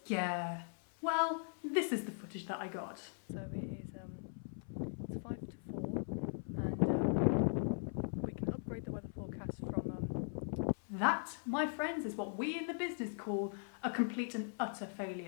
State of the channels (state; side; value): silent; right; 51 dB below the other